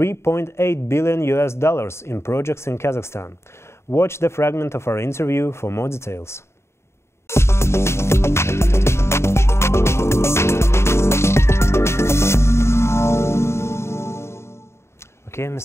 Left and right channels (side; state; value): right; late; 0.13 ms